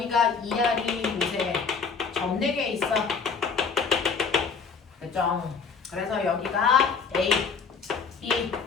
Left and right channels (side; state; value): right; quieter; 5.4 dB